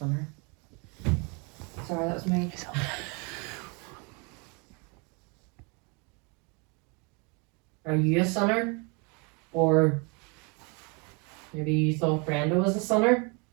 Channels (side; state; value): left; quieter; 32.5 dB